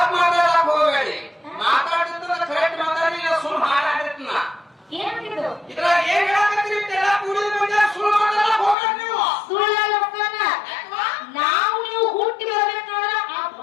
ಮಾತಾಡಕ್ ಹೋಗಬೇಡಿ. ಮಾತಾಡಿದ್ರೆ ಕರೆಕ್ಟ್ ಮಾತಾಡಿ, ಸುಳ್ಳು ಹಾಳಾಗಿರ್ತೀನ. ಇದ್ರ ಏನ್ ಹೇಳಕತ್ತೀರಿ? ಕುಡಿದ ಮಂದಿ ಸುಳ್ಳು ಮಾತಾಡಕ್ ಹೋಗ್ಬೇಡಿ ನೀವು. ನಾವು ನೀವು ಹುಟ್ಟಿ ಬರ್ಬೇಕಾದ್ರೆ ಆ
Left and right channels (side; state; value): right; drops out; at 8.8 s